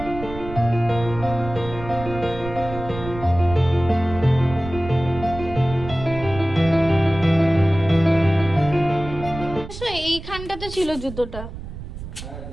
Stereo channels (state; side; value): noise; right; rumble, 11 dB below the sound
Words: এইখানটাতে ছিল জুতোটা।